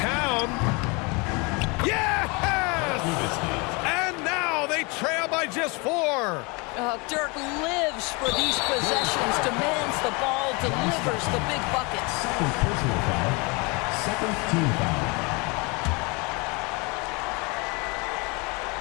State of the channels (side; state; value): right; quieter; 28.7 dB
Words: Yes! And now they trail by just 4. Dirk lives for these possessions, demands the ball, delivers the big buckets. Second personal foul, second team foul.